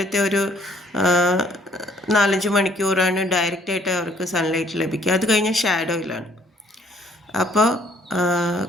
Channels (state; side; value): normal; both; correlation 0.62